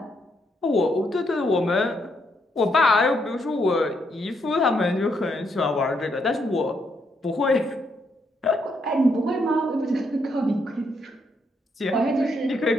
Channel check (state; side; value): normal; both; correlation 0.76